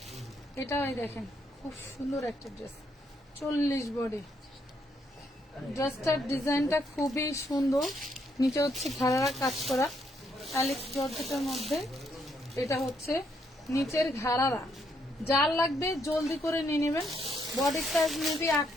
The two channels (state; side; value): normal; both; correlation 0.74